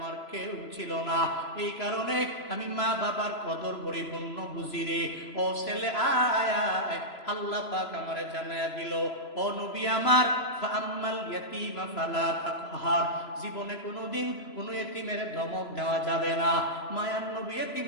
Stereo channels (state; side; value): late; right; 3.0 ms